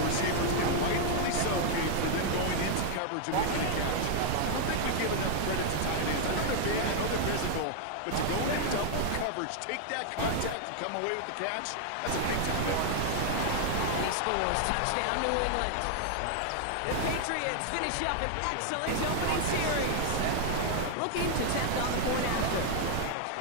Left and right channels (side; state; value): both; different; correlation 0.00